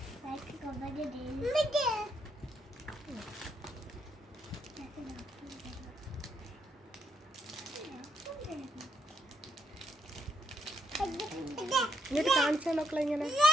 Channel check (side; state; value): both; normal; correlation 0.78